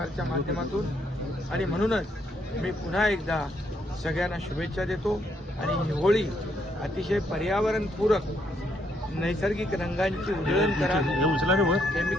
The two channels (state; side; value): normal; both; correlation 0.74